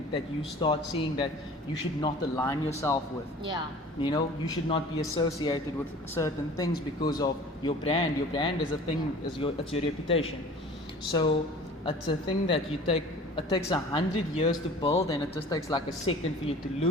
you start seeing that you should not align yourself with. Yeah. You know, you should not be associated with certain things because of your brand. Your brand is a thing, it's your reputation. So it's a thing that it takes 100 years to build, and it just takes like a second for you to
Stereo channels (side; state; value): both; normal; correlation 0.44